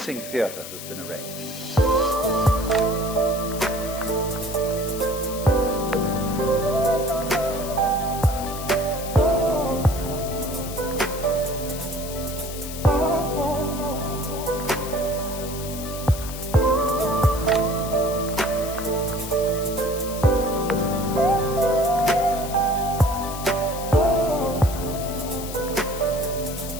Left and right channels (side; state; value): left; noise; hiss, 11 dB below the sound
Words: theater has been arranged.